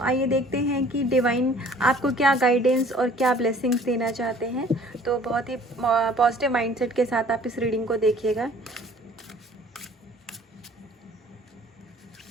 देखते हैं कि डिवाइन आपको क्या गाइडेंस और क्या ब्लेसिंग्स देना चाहते हैं। तो बहुत ही पॉजिटिव माइंडसेट के साथ आप इस रीडिंग को देखिएगा।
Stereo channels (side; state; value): both; normal; correlation 0.52